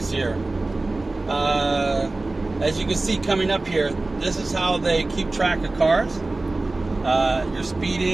here. As you can see coming up here, this is how they keep track of cars. You're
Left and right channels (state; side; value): quieter; left; 3.1 dB